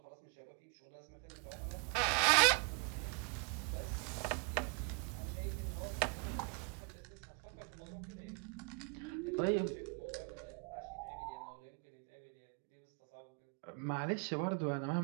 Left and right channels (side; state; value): left; quieter; 37.2 dB